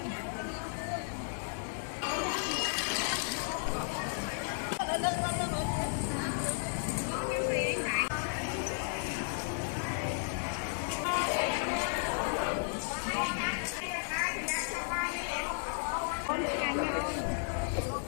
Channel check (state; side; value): silent; right; digital silence